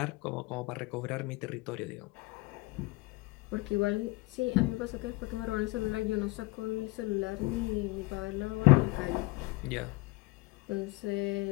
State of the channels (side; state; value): right; quieter; 22.7 dB